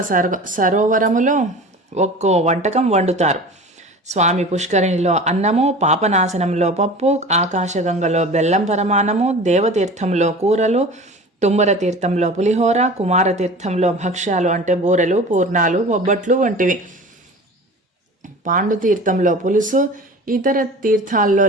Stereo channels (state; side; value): normal; both; correlation 0.37